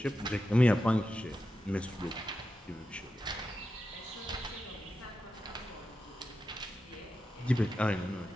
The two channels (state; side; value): normal; both; correlation 0.90